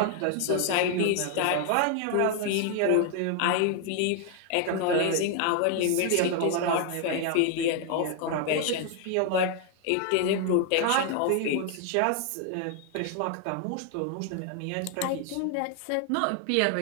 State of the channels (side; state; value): both; different; correlation 0.00